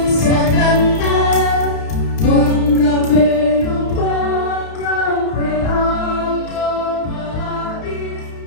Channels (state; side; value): late; right; 32 ms